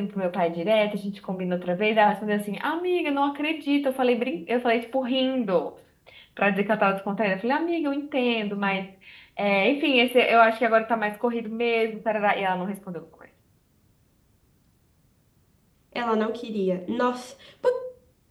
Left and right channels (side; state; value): both; identical; correlation 1.00